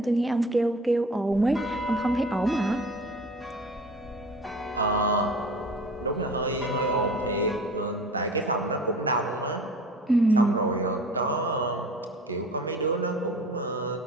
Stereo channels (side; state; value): both; normal; correlation 0.42